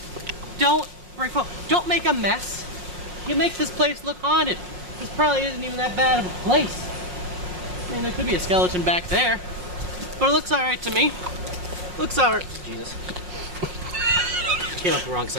Don't bring foam. Don't make a mess. You make this place look haunted. This probably isn't even that bad of a place. I mean, there could be a skeleton back there, but it looks all right to me. Looks all right. Jesus. Came up the wrong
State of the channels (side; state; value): left; late; 5.5 ms